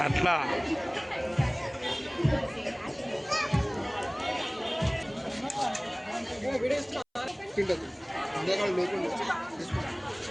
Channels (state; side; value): identical; both; correlation 1.00